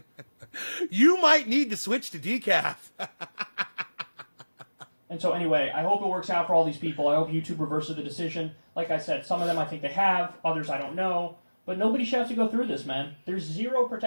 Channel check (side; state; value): both; inverted; correlation -1.00